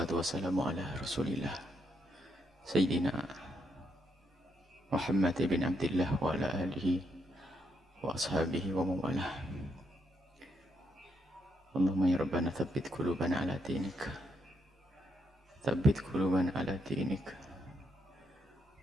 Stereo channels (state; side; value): normal; both; correlation 0.77